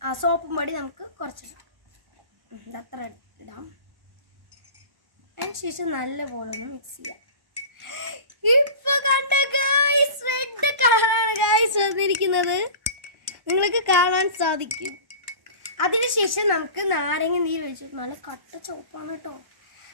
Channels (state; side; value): late; left; 1.1 ms